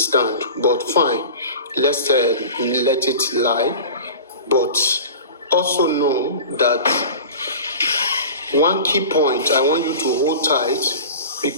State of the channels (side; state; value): both; inverted; correlation -0.36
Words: but fine. Let's let it lie. But also know that one key point I want you to hold tight